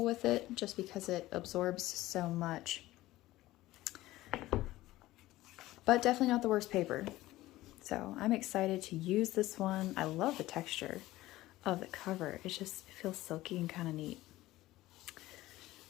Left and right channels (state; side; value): quieter; right; 16.9 dB